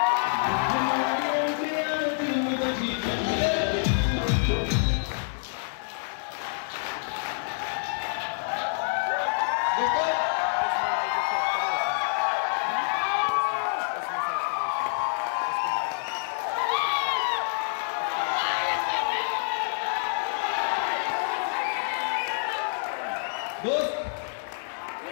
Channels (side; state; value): right; silent; digital silence